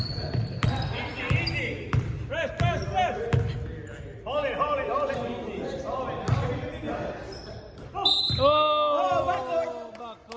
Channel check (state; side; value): identical; both; correlation 1.00